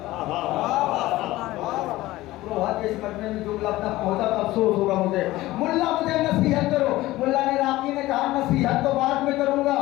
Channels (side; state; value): right; quieter; 17.5 dB